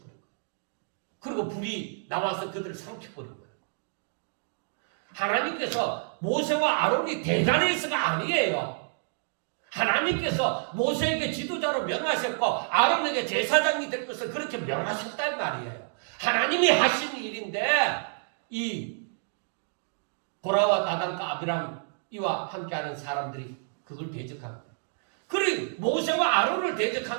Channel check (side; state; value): left; silent; digital silence